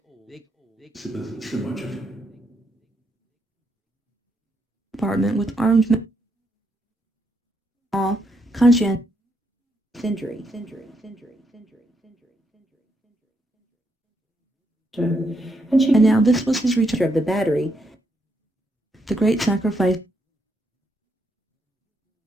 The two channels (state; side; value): normal; both; correlation 0.78